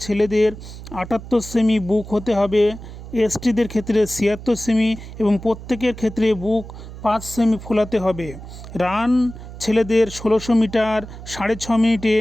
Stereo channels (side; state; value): right; noise; hum, 13 dB below the sound